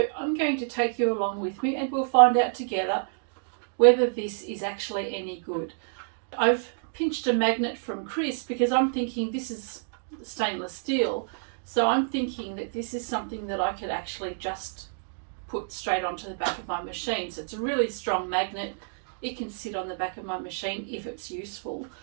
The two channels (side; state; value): left; silent; digital silence